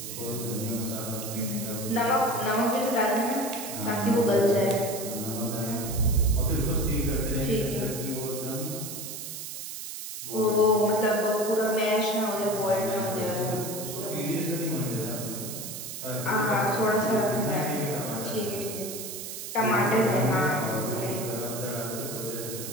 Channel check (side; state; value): right; noise; hiss, 8 dB below the sound